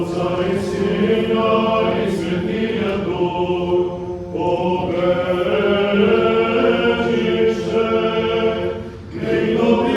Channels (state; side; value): identical; both; correlation 1.00